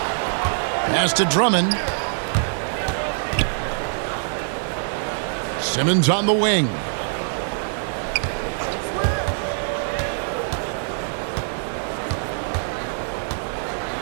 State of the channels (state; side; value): silent; left; digital silence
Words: Pass to Drummond. Simmons on the wing.